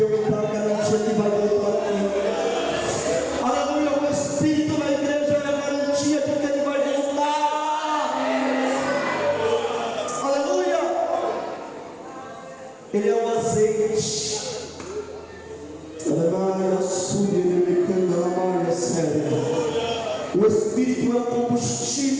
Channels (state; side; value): identical; both; correlation 1.00